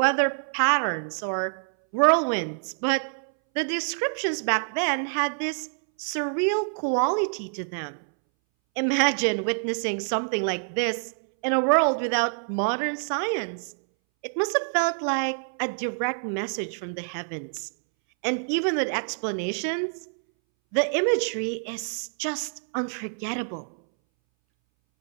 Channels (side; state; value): left; silent; 61 dB below the other